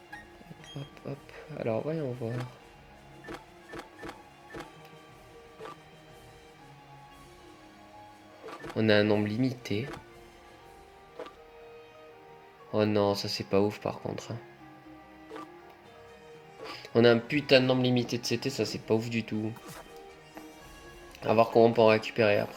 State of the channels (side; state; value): both; identical; correlation 1.00